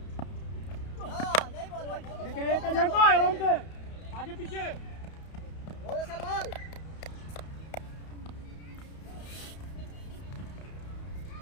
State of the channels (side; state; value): right; late; 31 ms